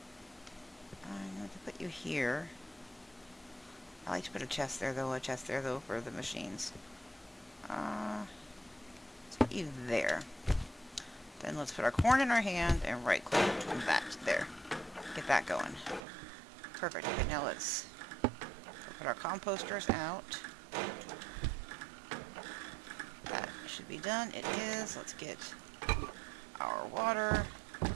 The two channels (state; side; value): drops out; left; at 16.0 s